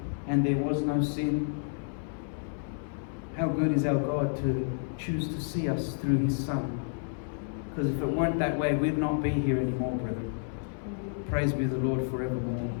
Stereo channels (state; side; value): silent; right; 58 dB below the other